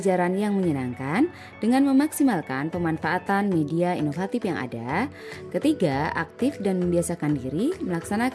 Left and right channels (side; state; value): both; identical; correlation 1.00